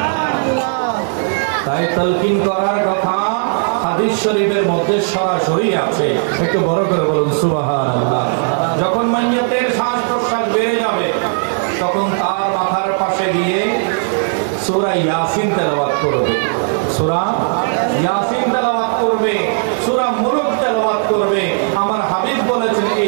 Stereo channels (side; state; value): left; silent; digital silence